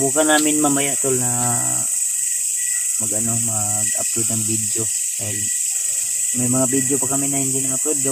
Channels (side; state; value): both; identical; correlation 1.00